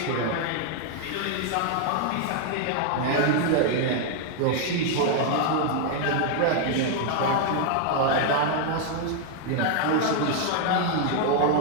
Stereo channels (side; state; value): both; different; correlation 0.00